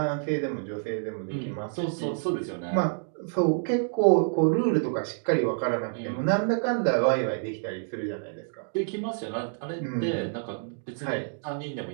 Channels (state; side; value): silent; left; digital silence